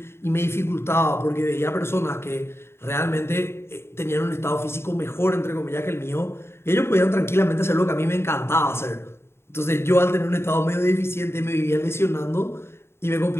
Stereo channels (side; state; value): right; late; 0.12 ms